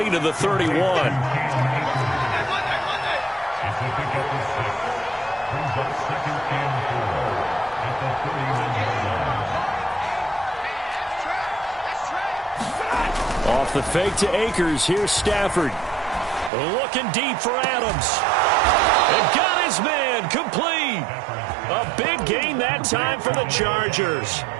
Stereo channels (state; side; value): drops out; left; at 16.5 s